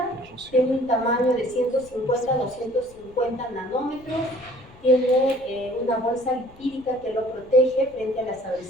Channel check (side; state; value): left; noise; rumble, 24 dB below the sound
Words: tiene un tamaño de 150 a 250 nanómetros, tiene una bolsa lipídica que lo protege frente a las